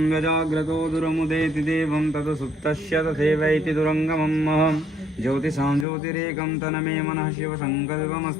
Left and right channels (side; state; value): right; drops out; at 5.9 s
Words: यजाग्रतो दुरमुदेति देवं तत् सुप्तस्य तथैवैति दुरङ्गमम् ज्योतिषां ज्योतिरेकं तन्मे मनः